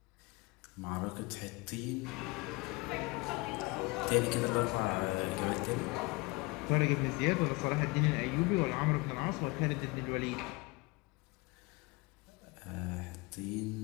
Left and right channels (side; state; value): right; quieter; 25.3 dB